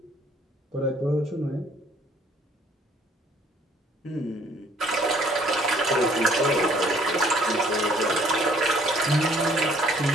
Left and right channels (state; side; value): normal; both; correlation 0.60